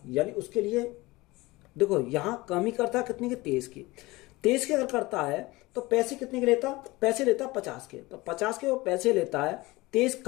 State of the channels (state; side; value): quieter; right; 21.2 dB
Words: यानी उसके लिए देखो यहाँ कमी करता है कितने के 23 की, 23 के अगर करता है तो पैसे कितने के लेता, पैसे लेता 50 के, तो 50 के वो पैसे लेता है, 23